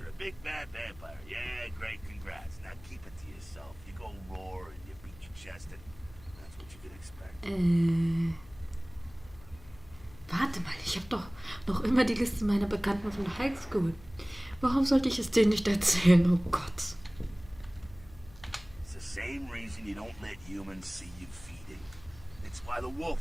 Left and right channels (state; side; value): noise; left; hum, 21 dB below the sound